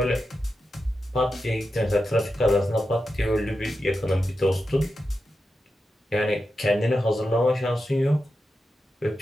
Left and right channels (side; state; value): both; normal; correlation 0.89